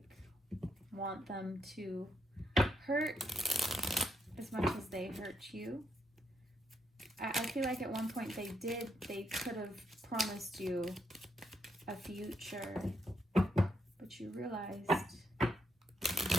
want them to hurt as much as they hurt you. I feel like at one point they could have promised you a future, but you realized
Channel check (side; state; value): both; normal; correlation 0.79